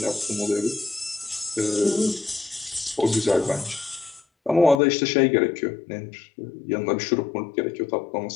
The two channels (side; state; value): right; drops out; at 4.8 s